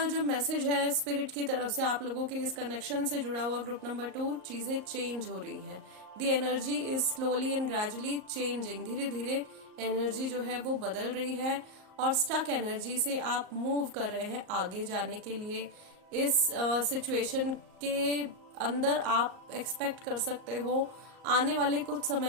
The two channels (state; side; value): late; left; 38 ms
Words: जो मैसेज है स्पिरिट की तरफ से आप लोगों के इस कनेक्शन से जुड़ा हुआ ग्रुप नंबर 2, चीजें चेंज हो रही हैं। The energy is slowly and gradually changing. धीरे धीरे एनर्जी जो है वो बदल रही है और स्टक एनर्जी से आप मूव कर रहे हैं आगे जाने के लिए। इस सिचुएशन के अंदर आप एक्सपेक्ट कर सकते हो आने वाले कुछ